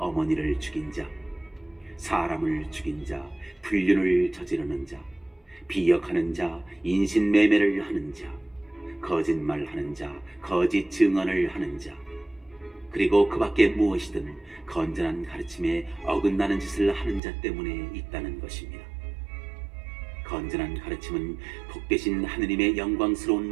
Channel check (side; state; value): left; drops out; at 17.2 s